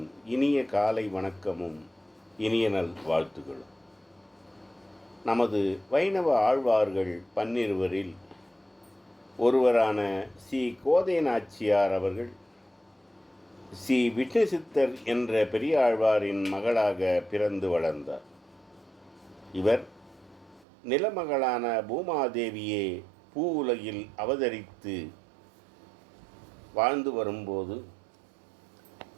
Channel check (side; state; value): left; drops out; at 20.7 s